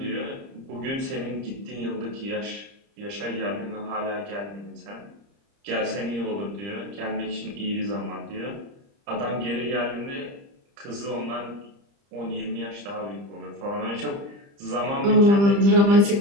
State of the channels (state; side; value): late; left; 30 ms